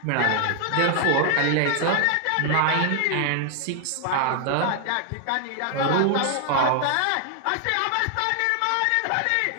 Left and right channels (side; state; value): both; different; correlation 0.00